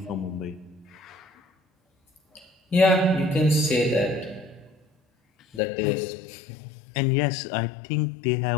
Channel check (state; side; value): drops out; right; at 5.6 s